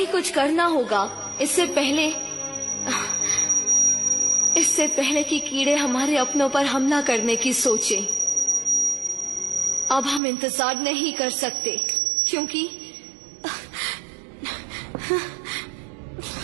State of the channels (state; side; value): drops out; left; at 10.2 s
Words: कुछ करना होगा, इससे पहले इससे पहले कि कीड़े हमारे अपनों पर हमला करने की सोचें। अब हम इंतजार नहीं कर सकते, क्योंकि